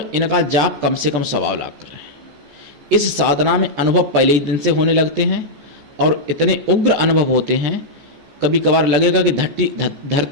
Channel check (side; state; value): left; late; 14 ms